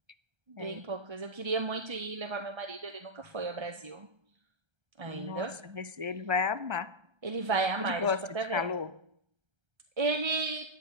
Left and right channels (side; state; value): left; late; 1.3 ms